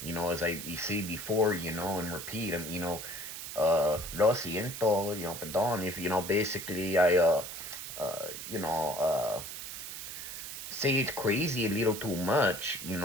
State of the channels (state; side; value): noise; right; hiss, 8 dB below the sound